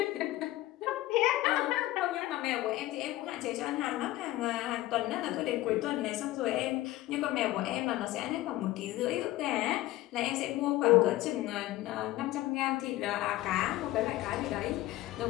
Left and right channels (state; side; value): quieter; right; 16.7 dB